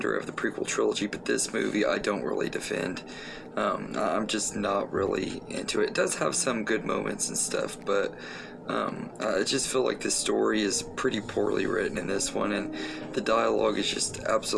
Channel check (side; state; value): both; identical; correlation 1.00